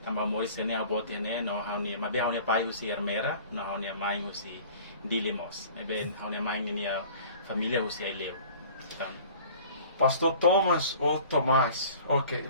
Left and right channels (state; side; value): inverted; both; correlation -0.46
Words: tambah moris kene how bot ne, no how ni, mabe how ni pai usi Armera, no how ni maing usi dili mos, eben how ni maing ni família usi Aileu. Pastor Thomas ou Tomás,